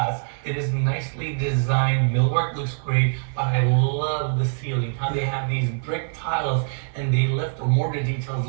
it is nicely designed. Millwork looks great, but I love the ceiling, how they have these brick tiles, and they left the mortar details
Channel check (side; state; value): left; silent; 63 dB below the other